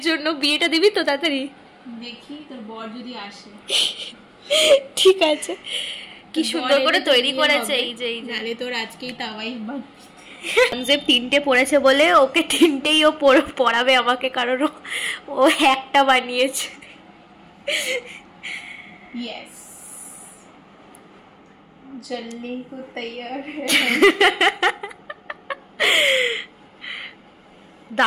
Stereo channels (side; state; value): both; identical; correlation 1.00